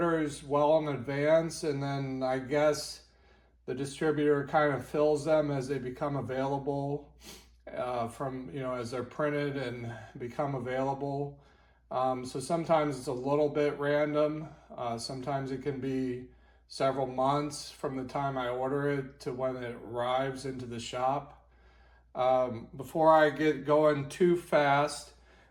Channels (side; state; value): both; identical; correlation 1.00